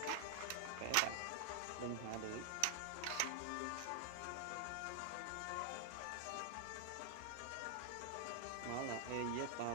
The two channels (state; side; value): different; both; correlation -0.01